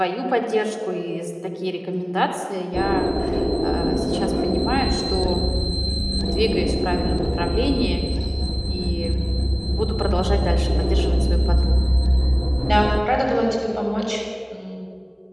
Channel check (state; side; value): identical; both; correlation 1.00